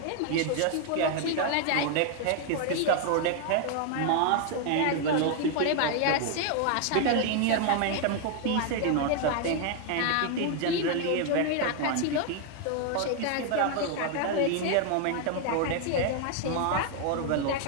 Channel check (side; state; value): both; different; correlation 0.00